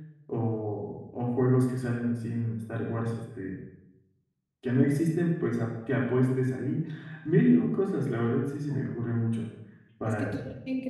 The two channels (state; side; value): identical; both; correlation 1.00